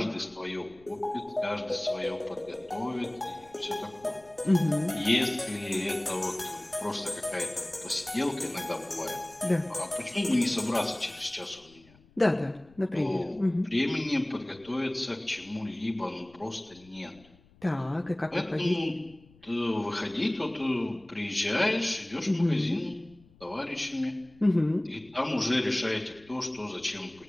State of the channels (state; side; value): noise; left; rumble, 27 dB below the sound